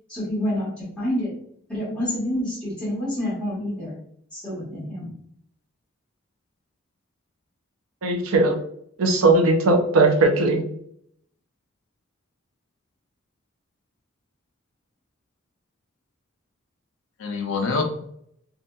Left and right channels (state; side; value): normal; both; correlation 0.23